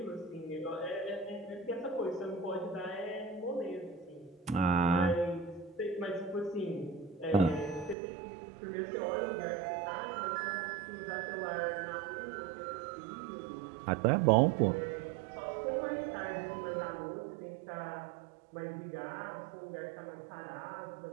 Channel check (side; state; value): left; drops out; at 8.0 s